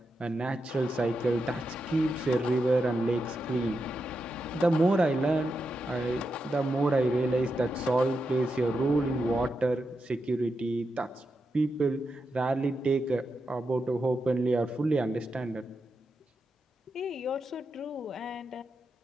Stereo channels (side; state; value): both; normal; correlation 0.87